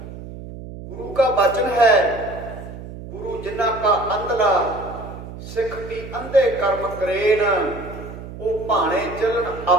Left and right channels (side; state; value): right; noise; hum, 12 dB below the sound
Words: ਗੁਰੂ ਕਾ ਬਚਨ ਹੈ, ਗੁਰੂ ਜਿਨ੍ਹਾਂ ਕਾ ਅੰਧਲਾ ਸਿੱਖ ਕੀ ਅੰਧੇ ਕਰਮ ਕਰੇਨ, ਉਹ ਭਾਣੇ ਚੱਲਣ